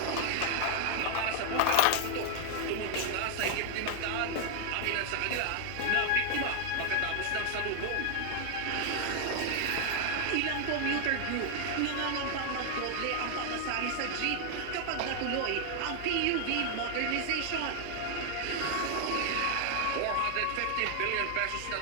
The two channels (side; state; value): both; different; correlation 0.00